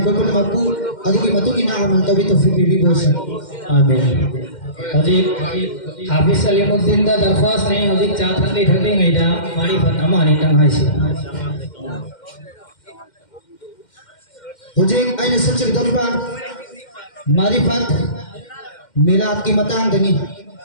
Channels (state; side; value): late; right; 2.1 ms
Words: कोई पुणे मक्कू अदुगी मतुगी ना अमल तो भी तौफीक भी बोश आमीन। हजी हाफिज सलीमुद्दीन दा दरख्वास्त नहीं हजी चार थकली थकली गई दा मारी फतमा नहीं तंग है सी मुझे आइने सबसे दरबार मारिफत मिलाद की मतंग दनी